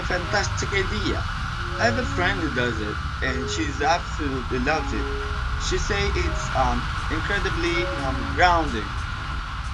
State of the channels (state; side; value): identical; both; correlation 1.00